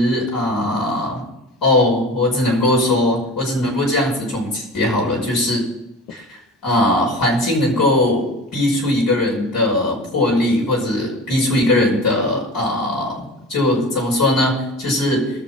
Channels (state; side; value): normal; both; correlation 0.36